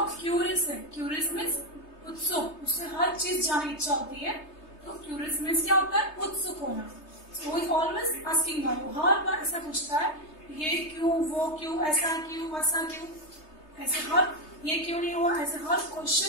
क्यूरियस है. क्यूरियस मीन्स उत्सुक, उससे हर चीज जानने की इच्छा होती है. तो क्यूरियस मीन्स क्या होता है? उत्सुक होना. So he always asking why. वो हर बार ऐसा पूछता है, ये क्यों, वो क्यों, ऐसा क्यों, वैसा क्यों, ऐसे हर ये क्यों नहीं हुआ, ऐसे हर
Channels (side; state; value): right; late; 3.3 ms